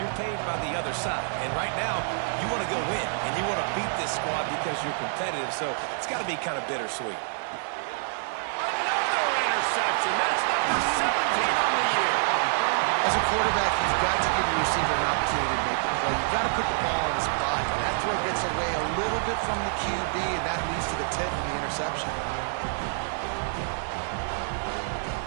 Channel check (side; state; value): left; silent; 60 dB below the other